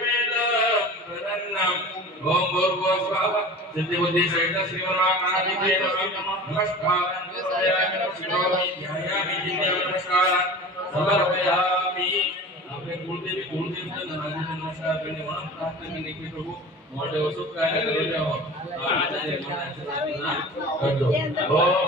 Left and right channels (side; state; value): both; normal; correlation 0.37